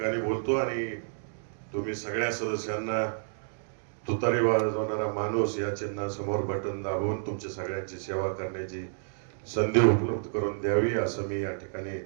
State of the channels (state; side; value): silent; left; digital silence